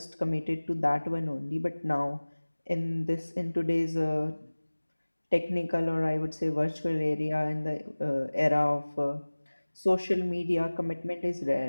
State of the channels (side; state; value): both; inverted; correlation -1.00